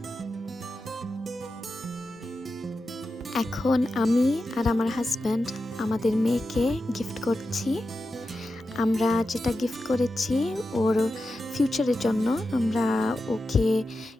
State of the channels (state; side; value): normal; both; correlation 0.90